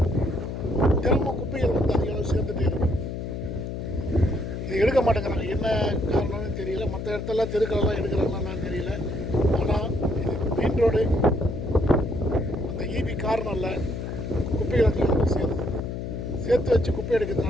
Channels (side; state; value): left; noise; hum, 5 dB below the sound